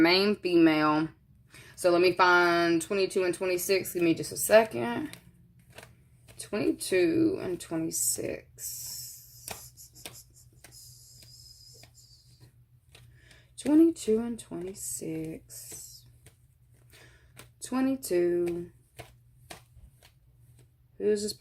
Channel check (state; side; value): identical; both; correlation 1.00